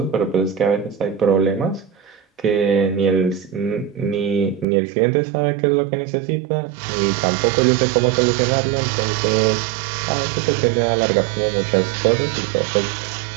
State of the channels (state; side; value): drops out; left; at 4.7 s